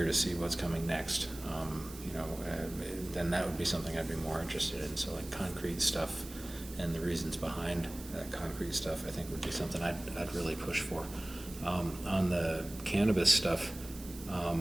to see what's coming next. Then that would be something I'd be more interested in. So like concrete stuff and the reasons behind that concrete stuff, I think would be something I'd really push for. On the cannabis stuff,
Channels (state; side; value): noise; right; hiss, 16 dB below the sound